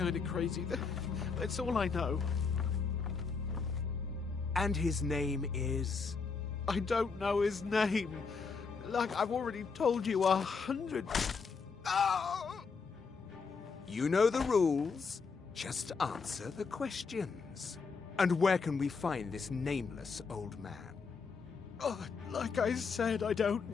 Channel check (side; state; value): right; quieter; 5.1 dB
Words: of crazy. That's all I know. And his name is? I don't know his name. Like I've already told you 100. Oh! You know the rules. Just answer the questions. And where can we find this nameless old man? Oh, like I said, I don't